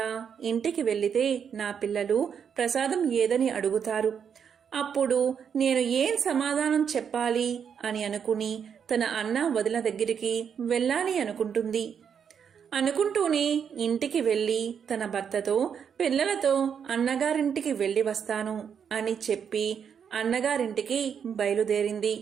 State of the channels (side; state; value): left; quieter; 7.4 dB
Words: ఇంటికి వెళ్లితే నా పిల్లలు ప్రసాదం ఏదని అడుగుతారు. అప్పుడు నేను ఏం సమాధానం చెప్పాలి అని అనుకుని తన అన్న వదిన దగ్గరికి వెళ్ళాలి అనుకుంటుంది. అనుకుంటూనే ఇంటికి వెళ్లి తన భర్తతో పిల్లలతో అన్నగారింటికి వెళ్లి వస్తాను అని చెప్పి అన్నగారింటికి బయలుదేరింది.